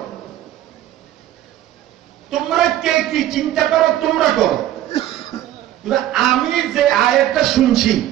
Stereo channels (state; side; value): quieter; left; 13.0 dB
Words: তোমরা কে কি চিন্তা করো তোমরা করো, আমি যে আয়াতটা শুনছি